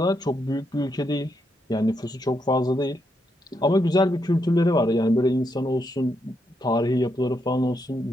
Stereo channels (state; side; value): normal; both; correlation 0.80